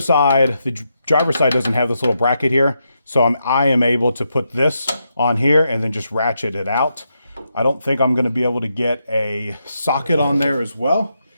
side, the driver's side doesn't have this little bracket here. So I am able to put this on here and then just ratchet it out. I don't think I'm going to be able to get a socket on there as well,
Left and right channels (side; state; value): both; inverted; correlation -0.83